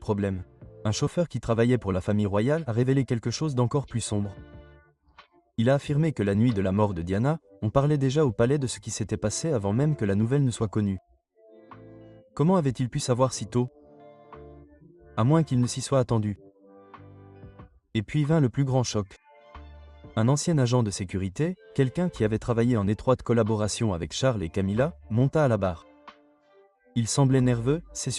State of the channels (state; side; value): identical; both; correlation 1.00